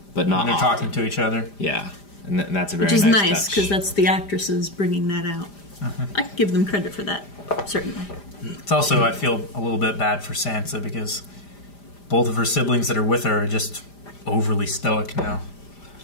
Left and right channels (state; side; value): late; right; 5.0 ms